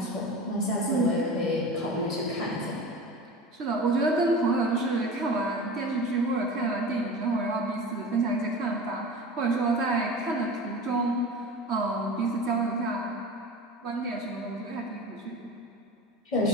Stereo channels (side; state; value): both; normal; correlation 0.33